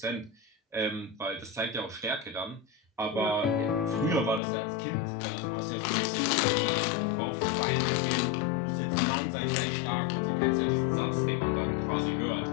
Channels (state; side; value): drops out; right; at 4.4 s